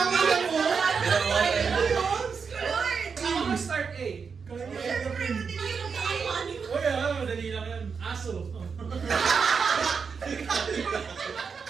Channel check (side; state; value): left; quieter; 5.8 dB